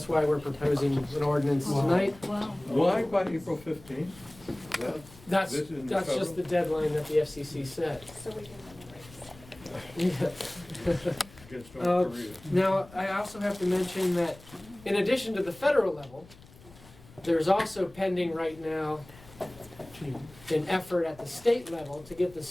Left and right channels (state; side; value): noise; left; rumble, 22 dB below the sound